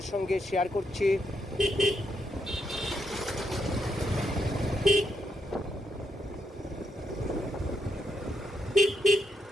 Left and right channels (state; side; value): normal; both; correlation 0.80